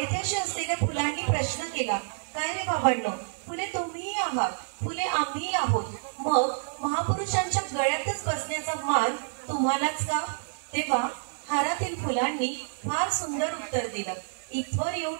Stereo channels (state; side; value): silent; left; 58 dB below the other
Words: असलेल्या फुलांनी प्रश्न केला, काय रे बाबांनो, फुले तुम्हीही आहात, फुले आम्हीही आहोत, मग महापुरुषांच्या गळ्यातच बसण्याचा मान तुम्हालाच का? तेव्हा हारातील फुलांनी फार सुंदर उत्तर दिलं, इथवर येऊन